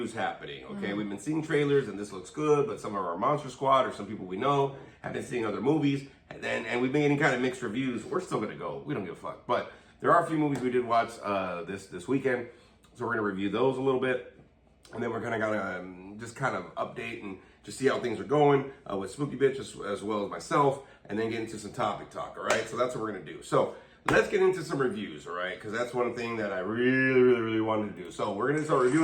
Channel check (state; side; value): identical; both; correlation 1.00